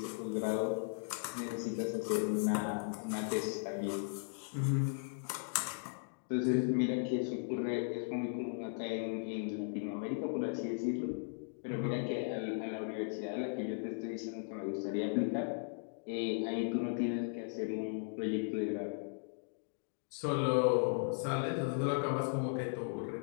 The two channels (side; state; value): right; silent; digital silence